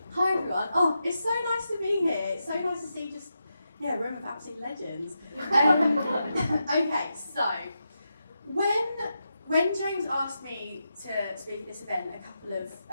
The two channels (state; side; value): inverted; both; correlation -0.87